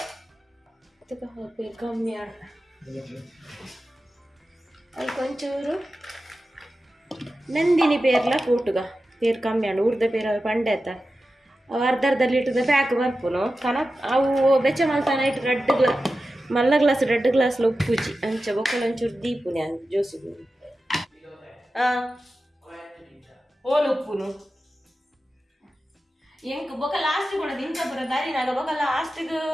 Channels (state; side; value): normal; both; correlation 0.93